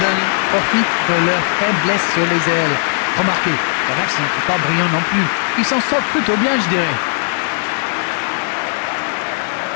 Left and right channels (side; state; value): right; silent; digital silence